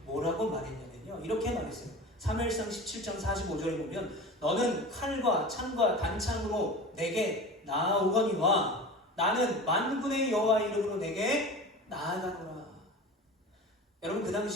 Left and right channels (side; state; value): both; normal; correlation 0.33